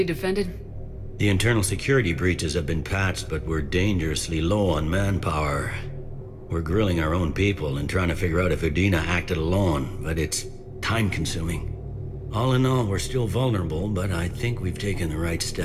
defended? The internal security breaches have been patched, but we're dangerously low on manpower. We're grilling our own people and trying to figure out if Udina acted alone, but it's time-consuming. All in all, we're still vulnerable, but I think we've taken the right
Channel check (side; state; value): both; identical; correlation 1.00